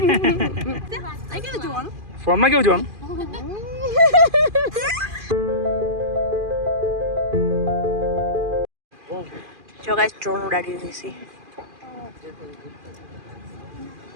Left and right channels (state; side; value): late; left; 2.4 ms